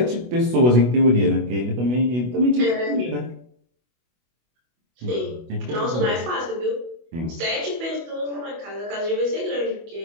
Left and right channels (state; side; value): late; left; 24 ms